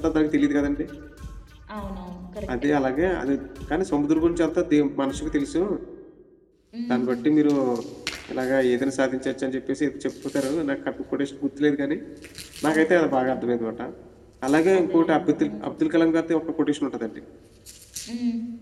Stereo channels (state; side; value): identical; both; correlation 1.00